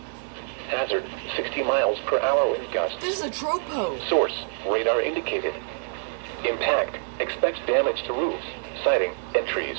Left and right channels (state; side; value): silent; left; digital silence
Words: Hazard, 60 miles per hour wind gusts. This is a tropo. Source, radar indicated. Impact, expects damage to roofs, siding, and trees.